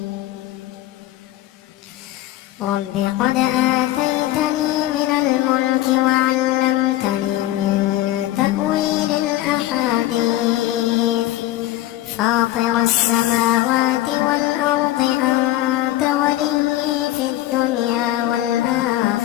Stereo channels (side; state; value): right; quieter; 15.1 dB